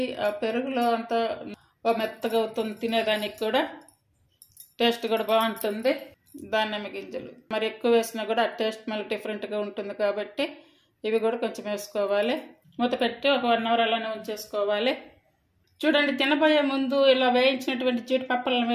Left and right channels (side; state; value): both; identical; correlation 1.00